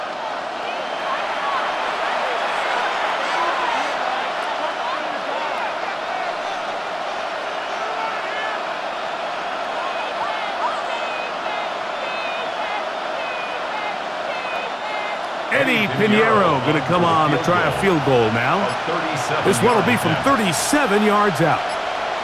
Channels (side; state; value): both; identical; correlation 1.00